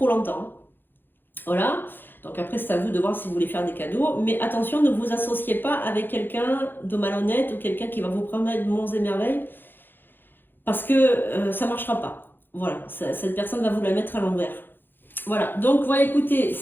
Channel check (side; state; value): right; late; 0.097 ms